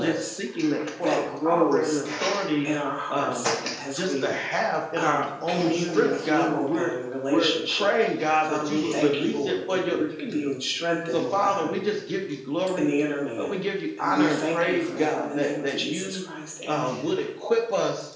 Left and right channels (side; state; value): both; identical; correlation 1.00